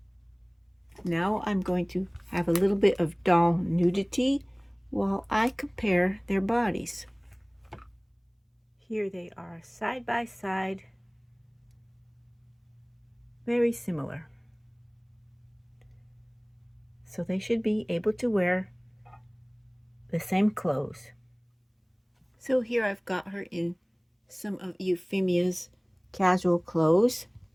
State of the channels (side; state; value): both; identical; correlation 1.00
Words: Now I'm going to have a little bit of doll nudity while I compare their bodies. Here they are side by side, very similar. So they should be able to wear the same clothes. So here I've got her in some of Euphemia's casual clothes,